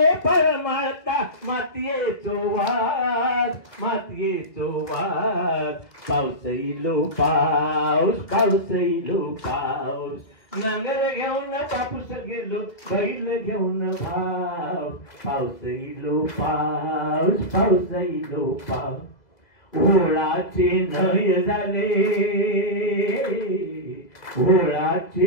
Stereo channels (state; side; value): late; right; 2.0 ms